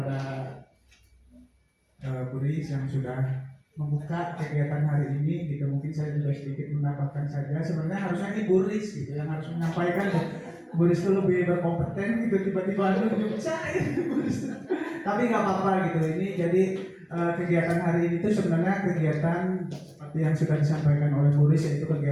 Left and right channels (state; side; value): identical; both; correlation 1.00